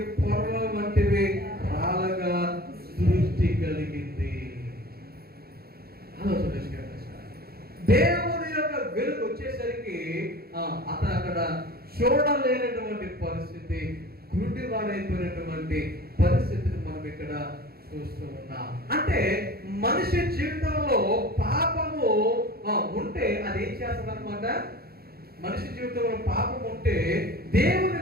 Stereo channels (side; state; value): left; late; 0.45 ms